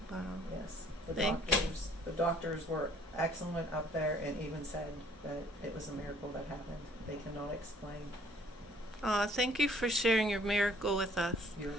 Wow. Yes. Thank you. The doctors were excellent up there, and even said that it was a miracle that happened. They cannot explain. Thank you for sharing your miracle with us. You're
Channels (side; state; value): both; normal; correlation 0.58